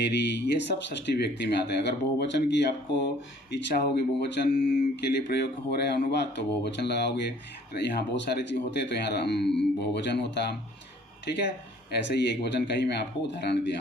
ये सब षष्ठी व्यक्ति में आते हैं। अगर बहुवचन की आपको इच्छा होगी, बहुवचन के लिए प्रयोग हो रहे हैं अनुवाद, तो बहुवचन लगाओगे। यहाँ बहुत सारे चीज़ होते हैं तो यहाँ बहुवचन होता, ठीक है। ऐसे ही एक वचन का ही मैं आपको उदाहरण दिया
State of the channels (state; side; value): normal; both; correlation 0.56